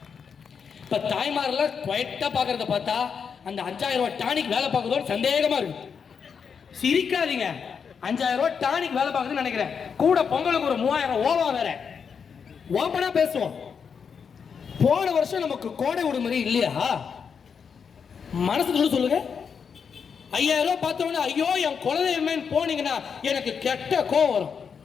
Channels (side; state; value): right; quieter; 6.5 dB